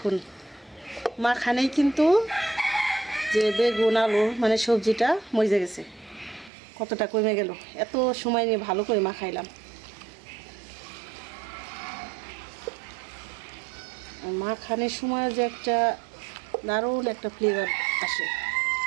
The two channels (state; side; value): drops out; left; at 6.5 s